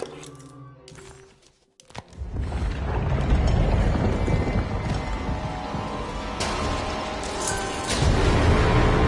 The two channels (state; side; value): identical; both; correlation 1.00